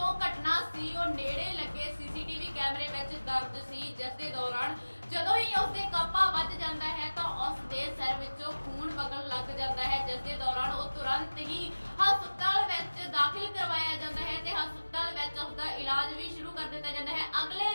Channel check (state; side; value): inverted; both; correlation -1.00